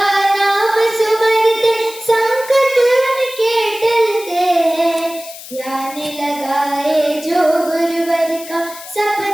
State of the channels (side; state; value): left; noise; hiss, 15 dB below the sound